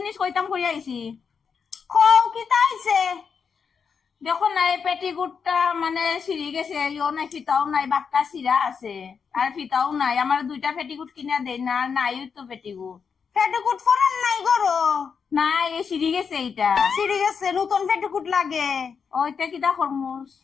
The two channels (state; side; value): quieter; right; 6.2 dB